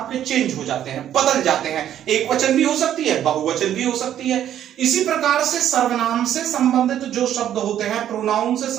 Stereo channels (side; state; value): left; quieter; 10.8 dB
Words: चेंज हो जाते हैं, बदल जाते हैं। एक वचन भी हो सकती है, बहुवचन भी हो सकती है। इसी प्रकार से सर्वनाम से संबंधित जो शब्द होते हैं, प्रोनाउन से